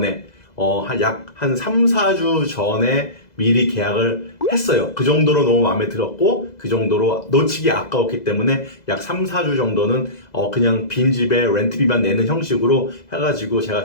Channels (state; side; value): late; right; 2.0 ms